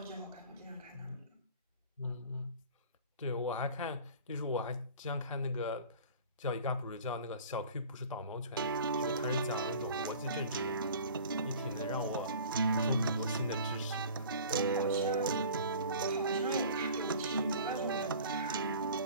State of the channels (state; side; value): inverted; both; correlation -0.43